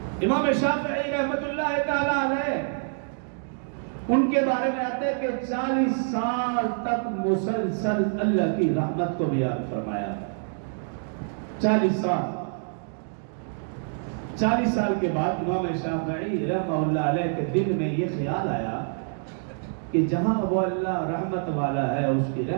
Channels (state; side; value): silent; left; digital silence